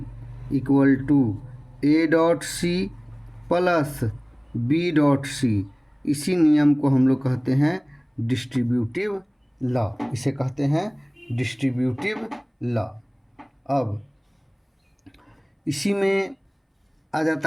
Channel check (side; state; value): both; identical; correlation 1.00